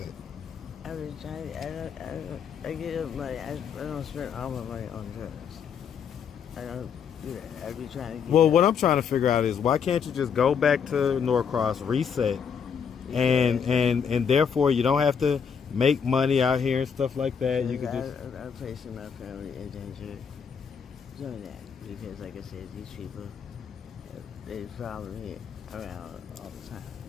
I've been trying. I get up money. I don't spend all my money on drugs. I don't do that. I be trying to get. Well, what I'm trying to figure out is why can't you just go back to Norcross, reset, and therefore you don't have to make money out here and stuff like that. You could just. I'm placing my family in danger doing that because, like I said, these people they follow me around all the time.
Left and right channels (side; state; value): right; quieter; 6.9 dB